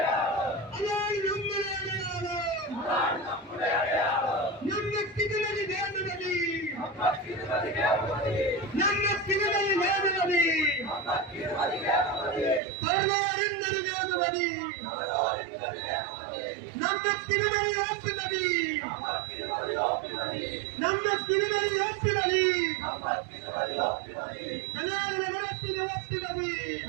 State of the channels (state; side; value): drops out; left; at 12.6 s